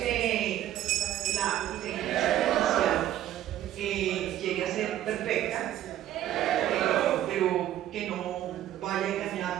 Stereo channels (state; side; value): quieter; left; 12.5 dB